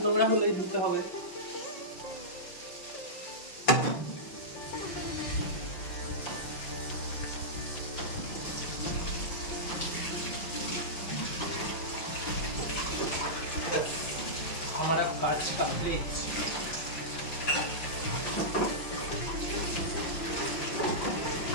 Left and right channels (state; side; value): late; right; 5.8 ms